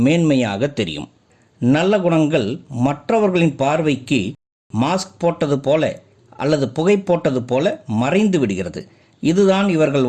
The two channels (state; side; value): identical; both; correlation 1.00